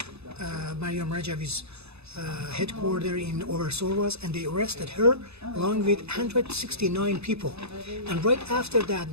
Mariam Rajavi's headquarters in Oversorwas, and they arrested her along with 169 people. And right after that,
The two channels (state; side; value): late; left; 0.79 ms